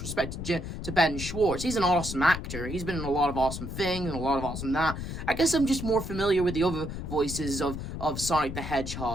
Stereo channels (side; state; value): left; noise; rumble, 7 dB below the sound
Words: to Ben Schwartz. He's an awesome actor. He's been in a lot of awesome things and a lot of awesome that. I guess I'm just more familiar with the other voices of Sonic the